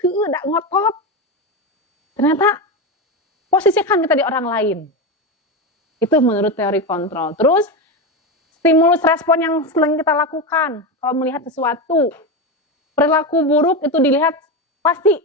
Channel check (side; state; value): both; normal; correlation 0.15